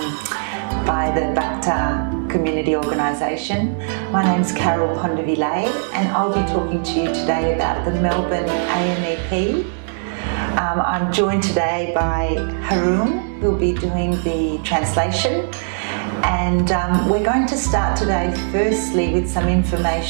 by the Bakhtar community organisation. My name's Carol Pondavile and I'll be talking to you today about the Melbourne AMEP. I'm joined today by Haroon, who'll be doing the translation. And we're going to start today firstly with some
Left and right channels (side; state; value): left; silent; digital silence